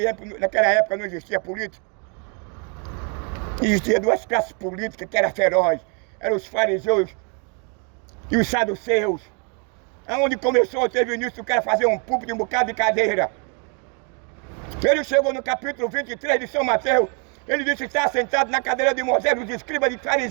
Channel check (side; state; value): left; quieter; 36.2 dB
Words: época não existia política? Existia duas classes políticas que eram ferozes. Eram os fariseus e os saduceus. Aonde começou, teve início o cara fazer um púlpito e um bocado de cadeira. Ele chegou no capítulo 23 de São Mateus. Ele disse que está sentado na cadeira de Moisés, dos escribas de